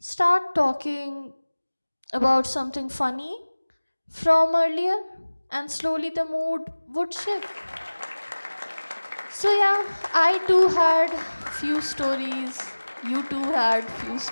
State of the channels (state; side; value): inverted; both; correlation -1.00